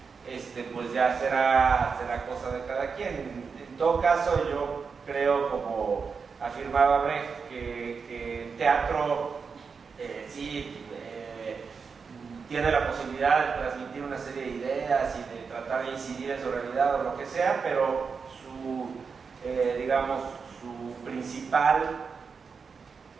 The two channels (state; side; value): quieter; left; 5.4 dB